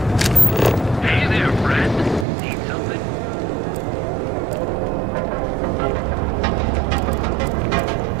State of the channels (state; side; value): drops out; left; at 2.2 s